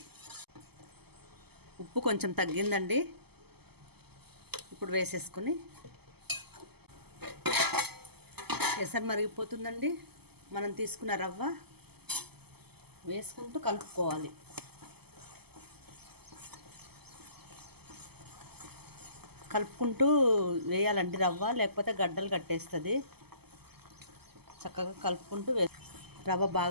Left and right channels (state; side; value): late; left; 0.96 ms